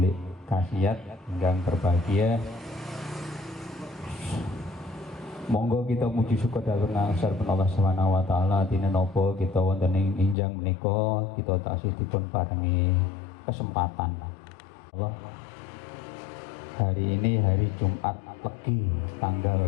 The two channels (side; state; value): right; drops out; at 10.4 s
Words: Kasiat ingkang berbahagia. Monggo kita muji syukur dhateng asripun Allah Subhanahu wa taala dina napa kita wonten ing injang menika kita taksih dipun paringi kesempatan. Allah, hari ini hari Jumat Legi tanggal